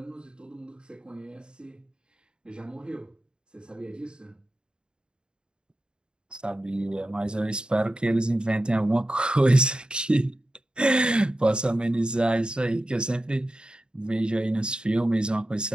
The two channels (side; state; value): left; late; 0.050 ms